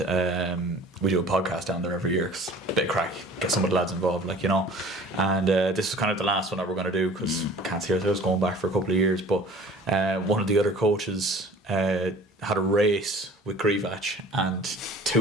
we do a podcast down there every year. Cause bit of crack, get some of the lads involved, like, you know. And this is kind of the last one that we're going to do because we can't see ourselves going back for a couple of years. But one of the other coaches had a race with Grievach and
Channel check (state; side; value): normal; both; correlation 0.46